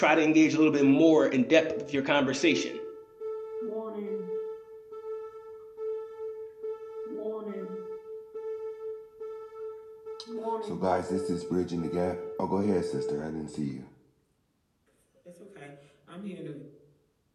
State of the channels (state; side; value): identical; both; correlation 1.00